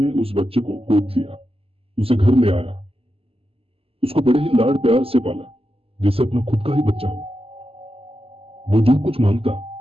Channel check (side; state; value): left; late; 0.28 ms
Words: उस बच्चे को गोद लिया, उसे घर ले आया, उसको बड़े ही लाड प्यार से पाला जैसे अपना खुद का ही बच्चा हो। वो जो कुछ मांगता